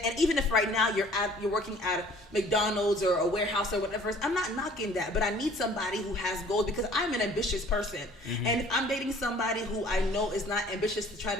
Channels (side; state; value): both; normal; correlation 0.53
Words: And even if right now you're working at McDonald's or a warehouse or whatever, I'm not knocking that, but I need somebody who has goals because I'm an ambitious person. And if I'm dating somebody who I know is not ambitious to try